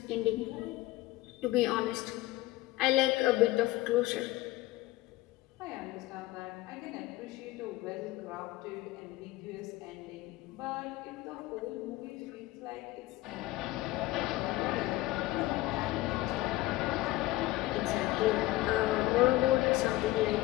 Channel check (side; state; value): right; quieter; 17.5 dB